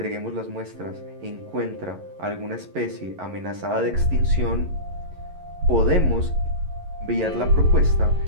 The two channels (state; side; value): late; left; 11 ms